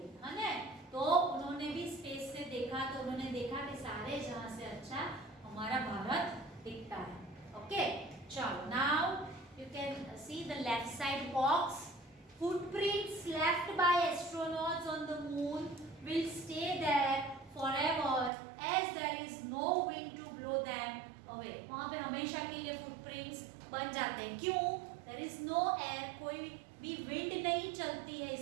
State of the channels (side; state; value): left; drops out; at 18.3 s